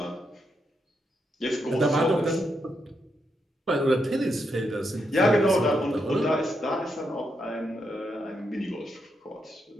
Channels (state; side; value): normal; both; correlation 0.82